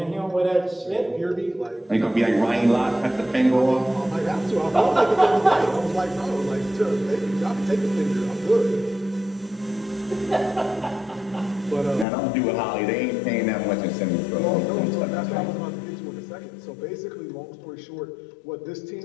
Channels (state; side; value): drops out; right; at 12.1 s